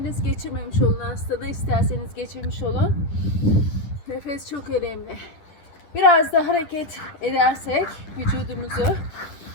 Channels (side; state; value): right; late; 10 ms